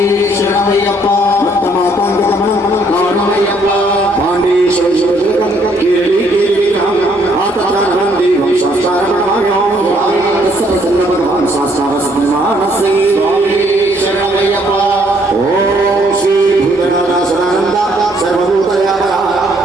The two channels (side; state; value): both; normal; correlation 0.67